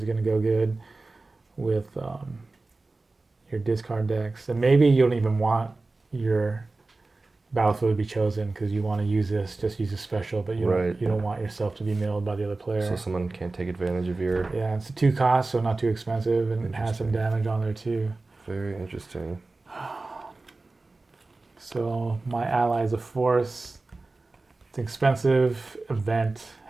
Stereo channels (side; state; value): left; quieter; 3.4 dB